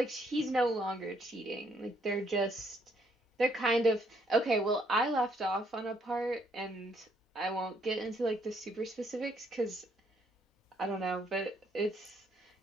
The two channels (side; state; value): both; normal; correlation 0.70